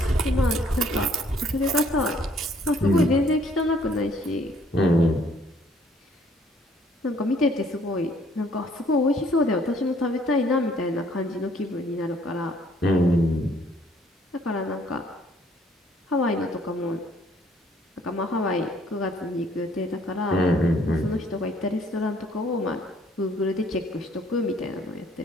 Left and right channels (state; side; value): normal; both; correlation 0.62